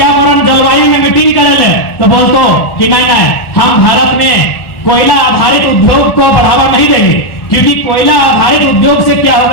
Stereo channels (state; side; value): late; right; 1.4 ms